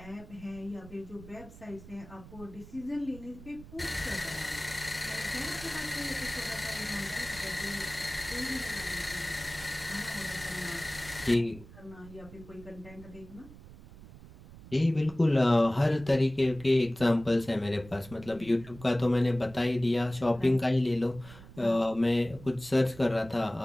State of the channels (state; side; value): noise; right; rumble, 18 dB below the sound